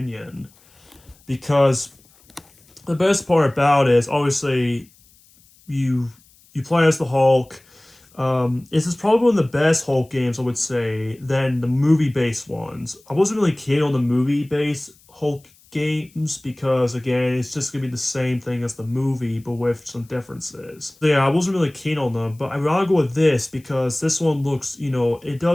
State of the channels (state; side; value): noise; left; hiss, 30 dB below the sound